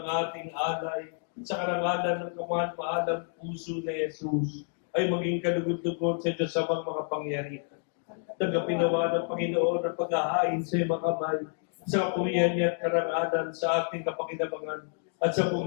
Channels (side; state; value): right; silent; 58 dB below the other